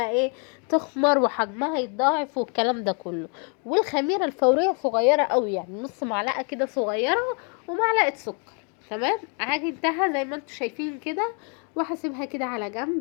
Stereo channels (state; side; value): quieter; right; 38.6 dB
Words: ايه تخمر وحجمها يتضاعف والكلام ده كله. والخميره الفوريه صغيره قوي، يعني نص معلقه كده صغيره ومعلقه سكر. تمام، عجنتها زي ما انتم شايفين كده، وهسيبها كده على